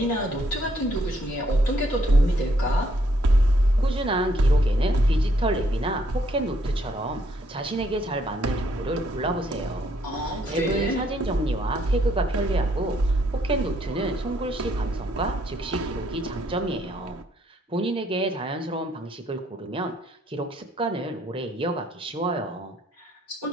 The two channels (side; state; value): both; normal; correlation 0.70